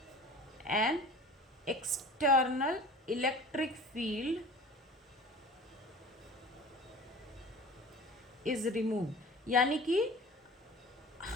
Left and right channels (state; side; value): normal; both; correlation 0.41